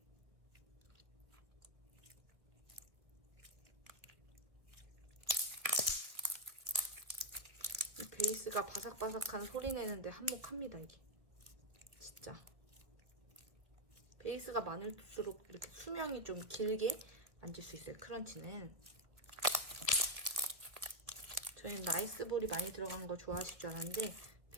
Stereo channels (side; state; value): left; late; 1.5 ms